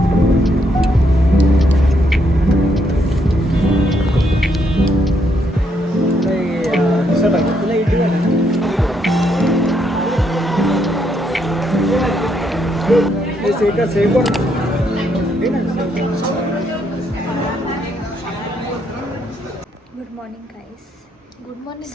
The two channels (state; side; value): normal; both; correlation 0.75